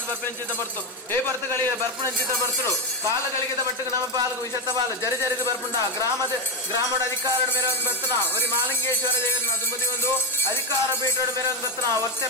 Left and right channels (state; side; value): normal; both; correlation 0.10